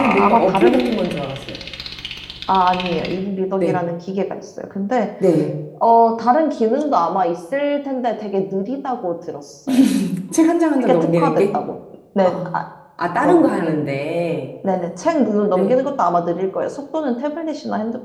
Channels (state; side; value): identical; both; correlation 1.00